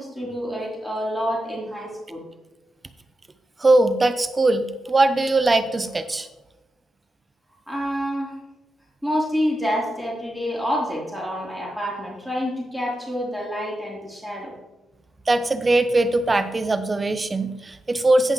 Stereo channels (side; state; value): both; normal; correlation 0.90